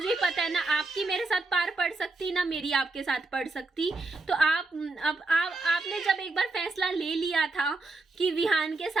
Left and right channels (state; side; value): quieter; left; 3.2 dB